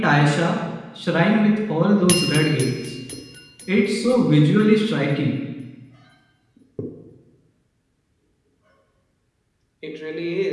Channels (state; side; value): identical; both; correlation 1.00